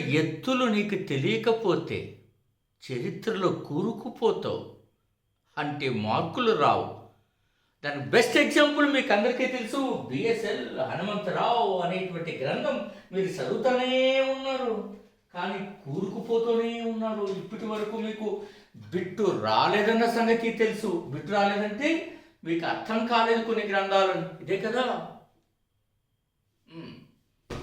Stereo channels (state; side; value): identical; both; correlation 1.00